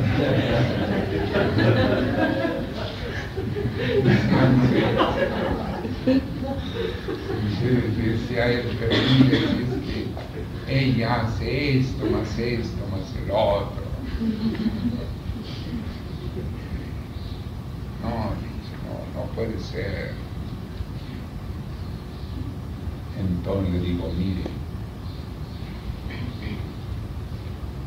Decía él, pero mire, es que ella hace esto, más el otro. No puede ser. Entonces le digo, mire,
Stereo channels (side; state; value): both; identical; correlation 1.00